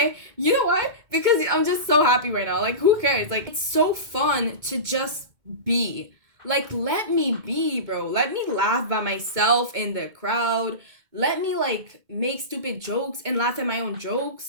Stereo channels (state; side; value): late; left; 2.2 ms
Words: You know why? Because I'm just so happy right now. Like, who cares? Like, it's so fun to just be. Like, let me be, bro. Let me laugh by myself in the crowd. Let me, like, make stupid jokes and laugh at my own